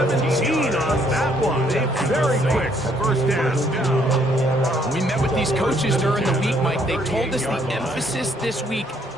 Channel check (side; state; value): both; normal; correlation 0.67